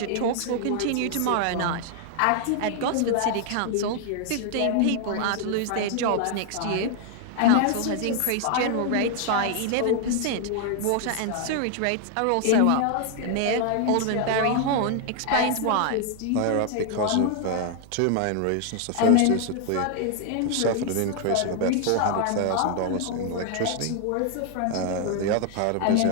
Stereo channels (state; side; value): different; both; correlation 0.00